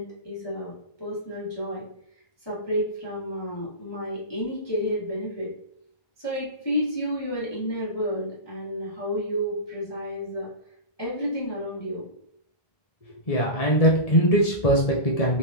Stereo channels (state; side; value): late; right; 1.7 ms